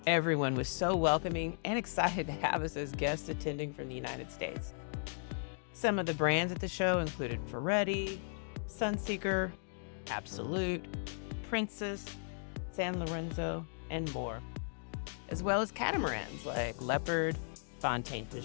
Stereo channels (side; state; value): right; silent; digital silence